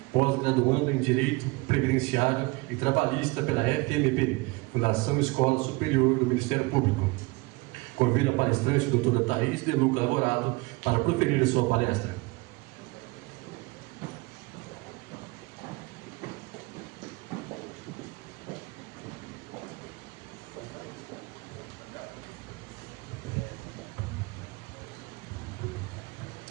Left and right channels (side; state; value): left; quieter; 24.2 dB